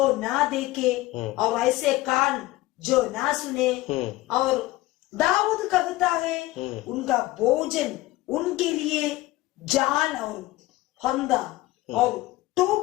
ना देखे और ऐसे कान जो ना सुने। और दाऊद कहता है, उनका भोजन उनके लिए जाल और फंदा और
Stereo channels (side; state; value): right; quieter; 18.3 dB